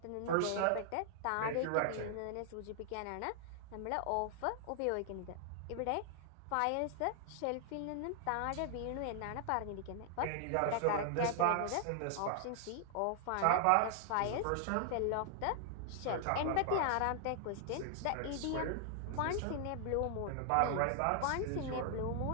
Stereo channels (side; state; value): both; different; correlation 0.00